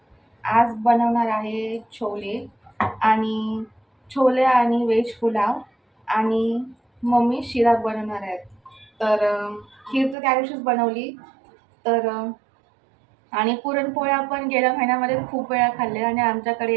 आज बनवणार आहे छोले आणि व्हेज पुलाव, आणि मम्मी शिरा बनवणार आहेत. तर खीर तर त्या दिवशीच बनवली. तर आणि पुरणपोळ्या पण गेल्या महिन्यामध्ये खूप वेळा खाल्ले. आणि आमच्याकडे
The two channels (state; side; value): drops out; left; at 10.2 s